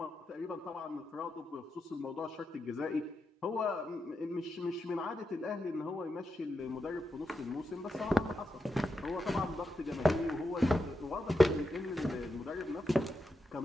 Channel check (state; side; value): normal; both; correlation 0.87